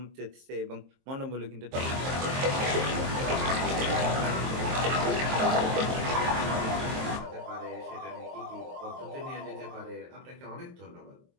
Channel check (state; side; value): late; left; 23 ms